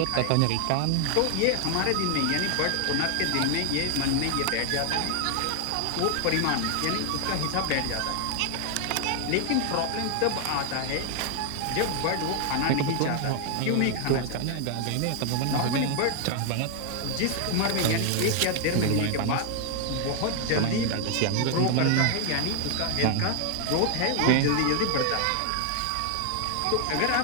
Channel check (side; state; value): both; different; correlation 0.00